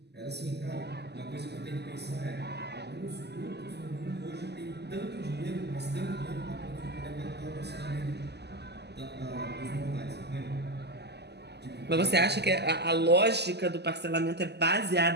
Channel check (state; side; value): late; left; 0.49 ms